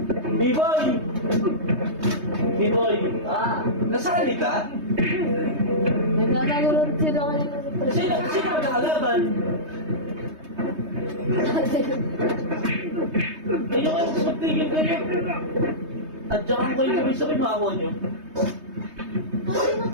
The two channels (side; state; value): left; late; 3.2 ms